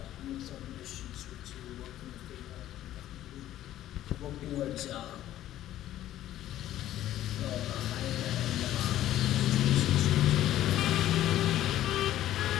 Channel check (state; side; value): quieter; right; 13.1 dB